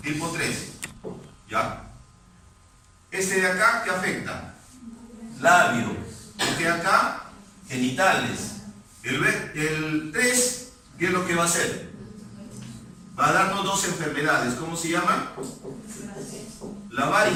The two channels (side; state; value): both; identical; correlation 1.00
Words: tipo 3. ¿Ya? Este de acá, ¿qué afecta? Labio. Este de acá, genitales. El 3, ¿qué es lo que va a hacer? Va a darnos dos enfermedades. ¿Cómo se llaman? La